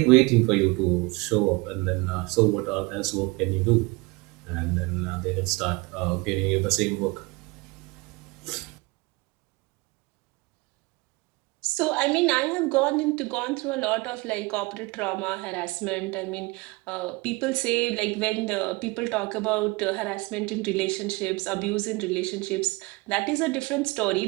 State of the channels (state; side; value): quieter; left; 25.1 dB